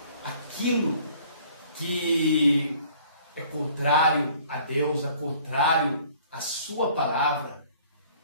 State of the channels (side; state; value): both; inverted; correlation -0.55